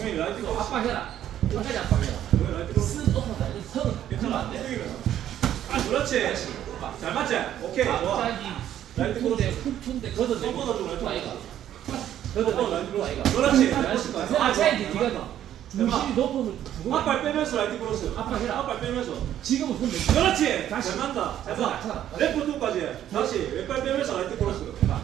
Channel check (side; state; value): left; quieter; 11.3 dB